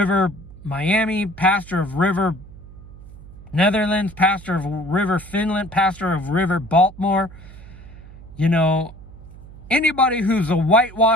Miami, pastor of River Netherlands, pastor of River Finland, pastor of River Baltimore. Anybody who's a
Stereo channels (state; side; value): noise; right; hum, 18 dB below the sound